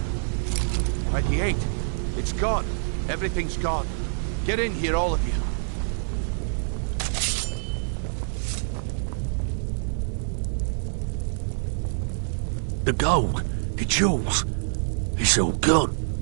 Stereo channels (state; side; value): silent; left; 61 dB below the other